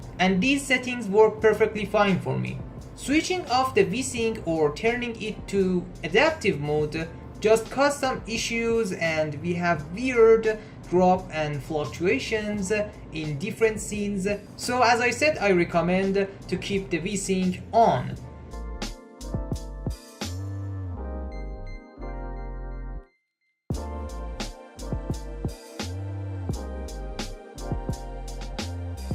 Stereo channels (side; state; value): both; identical; correlation 1.00